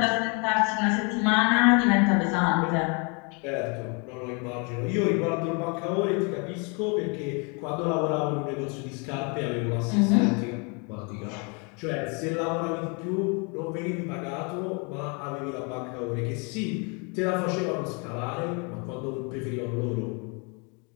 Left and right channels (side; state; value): right; quieter; 33.4 dB